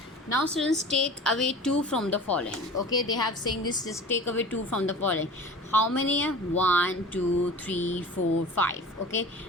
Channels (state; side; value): normal; both; correlation 0.39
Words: Now students, take away 2 from the following. Okay, they have saying this, just take away 2 from the following. How many? 1, 2, 3, 4, 5. Okay,